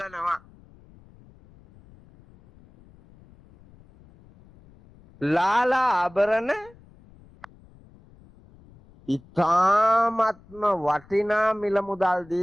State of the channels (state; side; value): noise; left; rumble, 26 dB below the sound